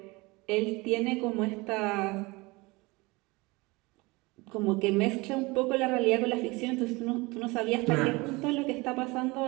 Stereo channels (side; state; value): left; quieter; 24.0 dB